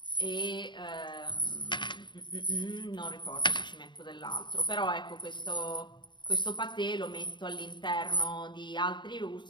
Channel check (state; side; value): late; right; 0.22 ms